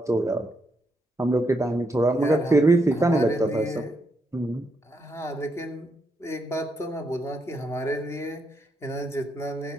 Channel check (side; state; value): both; normal; correlation 0.79